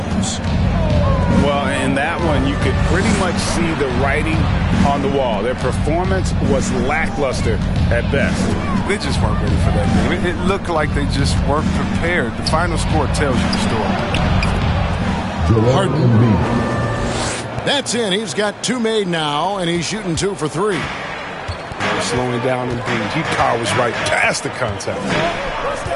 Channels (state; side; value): identical; both; correlation 1.00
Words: Well, in that one, you could pretty much see the writing on the wall. Their performance was lackluster at best. They just weren't ready for that game. It looked like they just weren't prepared. The final score tells you the story. Harden. That's in. He's got 2 made now, and he's shooting 2 for 3. They're slowing down Embiid. He powers right past the contact.